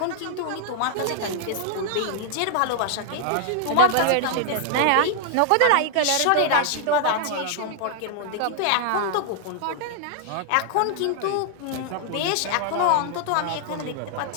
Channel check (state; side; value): different; both; correlation 0.00